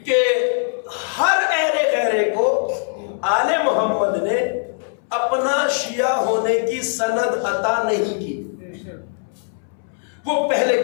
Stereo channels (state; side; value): silent; right; 65 dB below the other